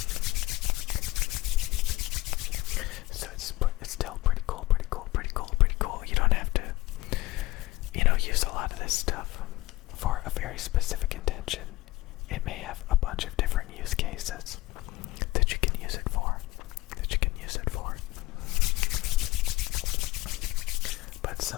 So it's still pretty cool, pretty cool, pretty cool, pretty cool. You don't have to, use a lot of this stuff for a very specific intention. It may have a bunch of different use cases that you can use it for, But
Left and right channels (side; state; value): right; quieter; 19.1 dB